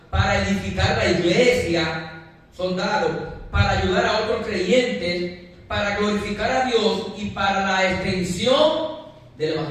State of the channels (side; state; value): both; identical; correlation 1.00